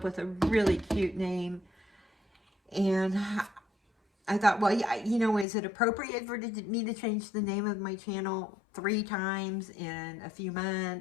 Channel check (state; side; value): drops out; right; at 5.5 s